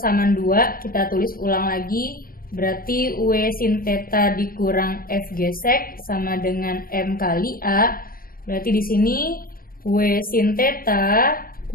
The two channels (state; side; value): late; right; 0.42 ms